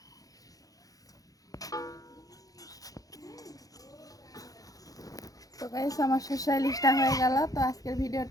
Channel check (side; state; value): right; late; 0.17 ms